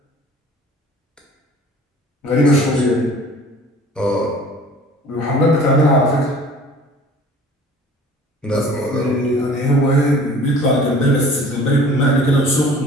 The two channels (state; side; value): normal; both; correlation 0.48